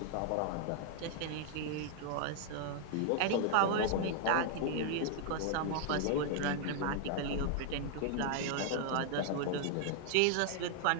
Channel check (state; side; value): different; both; correlation 0.00